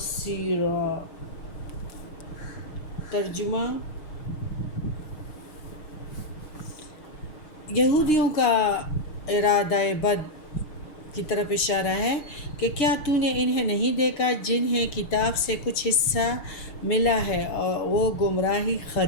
ترجمہ: یہودیوں کا ارادہ بد کی طرف اشارہ ہے کہ کیا تو نے انہیں نہیں دیکھا جنہیں کتاب سے کچھ حصہ ملا ہے اور وہ گمراہی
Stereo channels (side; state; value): right; late; 6.4 ms